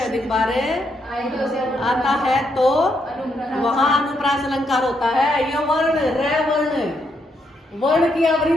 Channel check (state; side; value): normal; both; correlation 0.78